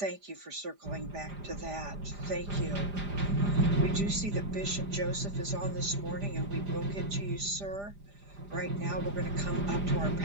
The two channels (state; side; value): late; left; 5.0 ms